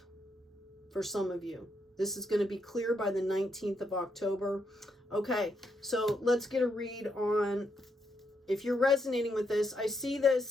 for some of you. This is going to be clear by the 19th of October. Okay, so let's get a read on if you're resonating with this. I see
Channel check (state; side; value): normal; both; correlation 0.79